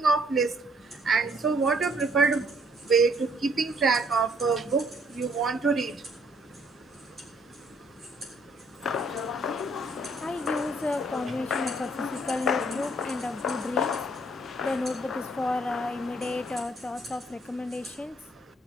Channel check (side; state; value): both; normal; correlation 0.65